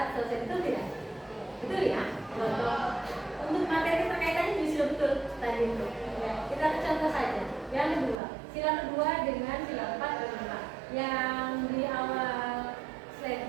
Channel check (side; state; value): left; drops out; at 8.2 s